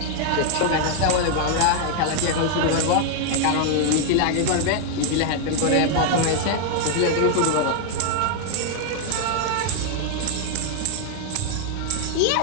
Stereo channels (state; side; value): different; both; correlation 0.00